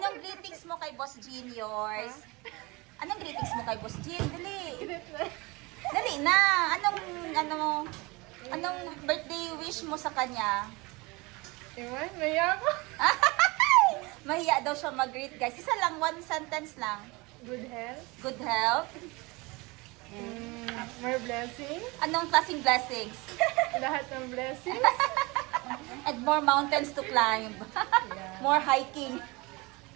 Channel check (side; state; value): left; quieter; 24.9 dB